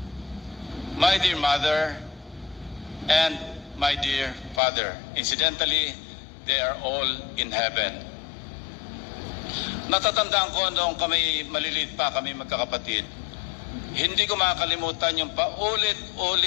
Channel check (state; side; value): drops out; right; at 4.6 s